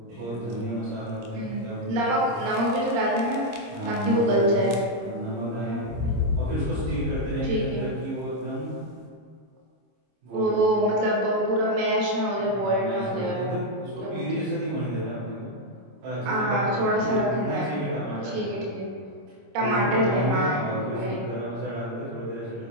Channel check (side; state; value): left; late; 26 ms